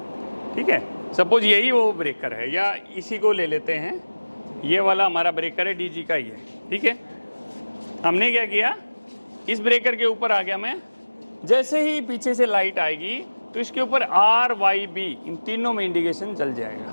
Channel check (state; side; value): inverted; both; correlation -1.00